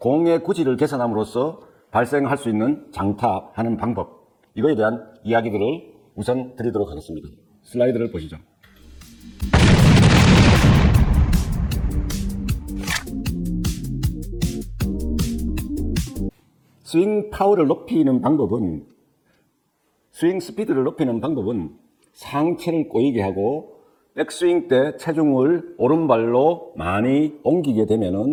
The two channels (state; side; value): identical; both; correlation 1.00